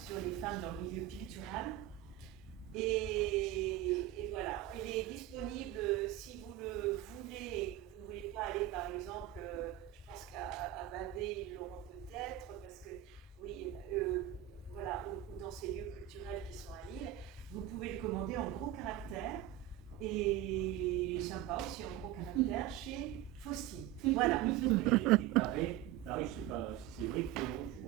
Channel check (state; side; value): quieter; left; 13.4 dB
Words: sur les femmes dans le milieu pictural. Et voilà, il est disponible si vous le voulez et que vous ne voulez pas aller par exemple, je pense qu'à Bavé ils l'auront peut-être, parce que oui, voilà, ou dans ces lieux culturels qui sont à Lille, vous pouvez le commander en gros caractères et sympa aussi en gros caractères chez Faustine. Voilà. Il paraît, je ne sais pas si c'est vrai